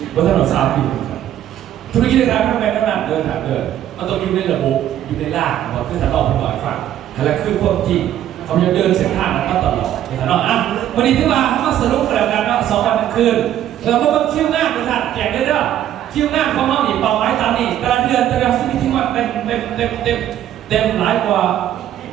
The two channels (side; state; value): left; quieter; 11.5 dB